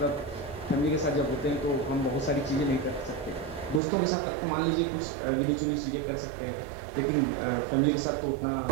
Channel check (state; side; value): drops out; left; at 3.8 s